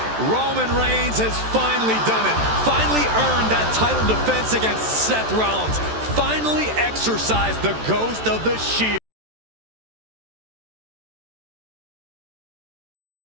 Roman Reigns has finally done it. Finally earned that title defense against Seth Rollins. Finally exercised the ghost of the Shield.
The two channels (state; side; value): late; left; 14 ms